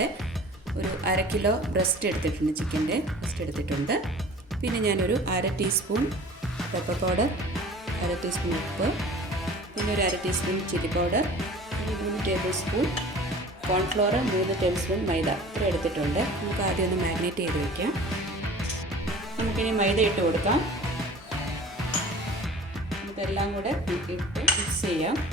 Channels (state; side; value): normal; both; correlation 0.44